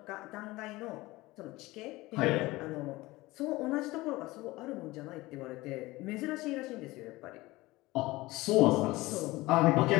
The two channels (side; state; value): right; quieter; 20.0 dB